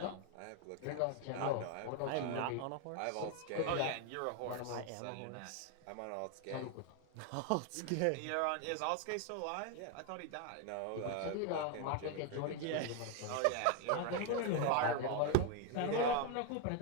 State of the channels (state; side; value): different; both; correlation 0.01